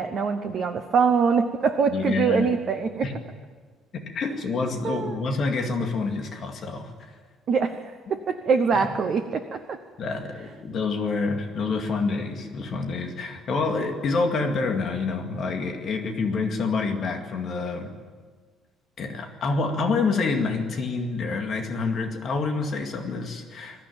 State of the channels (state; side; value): normal; both; correlation 0.66